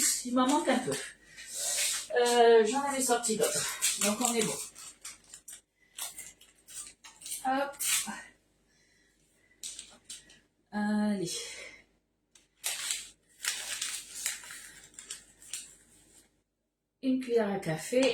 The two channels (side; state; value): both; identical; correlation 1.00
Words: Il m'en manque un peu. J'en avais sorti d'autres. Donc on est bon. Hop. Allez. Une cuillère à